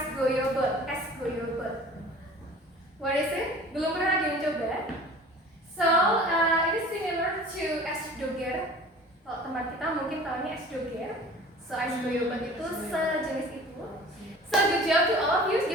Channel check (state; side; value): normal; both; correlation 0.44